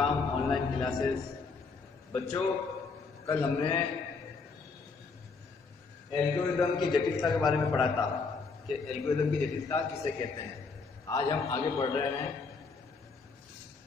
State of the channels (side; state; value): right; quieter; 4.6 dB